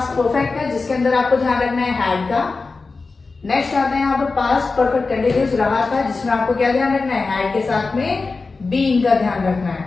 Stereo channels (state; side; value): quieter; right; 4.0 dB